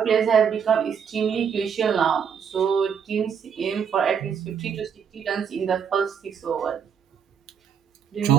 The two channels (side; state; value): left; quieter; 7.3 dB